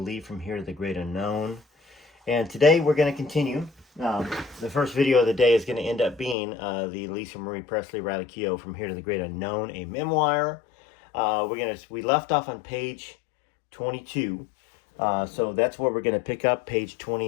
from Here to the Great Unknown. And today we're going to continue. The first video of the day is going to end up being the Lisa Marie Presley Riley Keough From Here to the Great Unknown, a memoir. We left off on page 22. So that's where we're going to pick up, page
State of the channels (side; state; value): right; drops out; at 6.4 s